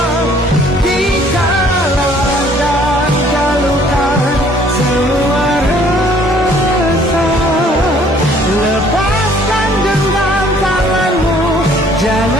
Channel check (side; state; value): both; normal; correlation 0.59